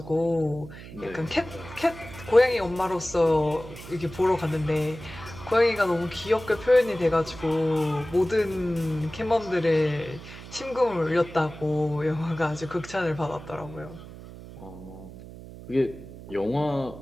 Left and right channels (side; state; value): right; noise; hum, 15 dB below the sound